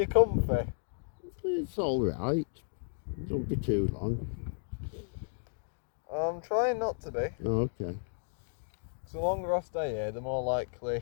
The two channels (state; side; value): silent; right; digital silence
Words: comfy? It's all right. Don't be too long. I'm trying not to be. Oh, okay. So the longer I stay here, the more